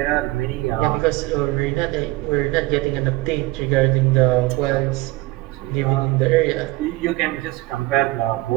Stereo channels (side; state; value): left; quieter; 20.0 dB